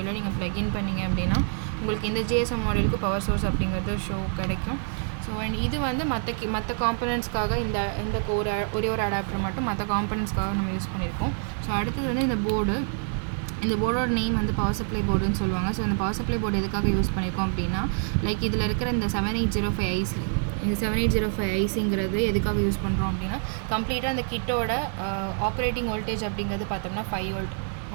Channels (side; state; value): left; silent; 60 dB below the other